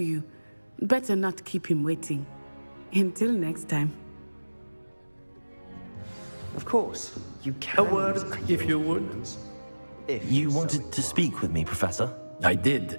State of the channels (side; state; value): both; inverted; correlation -1.00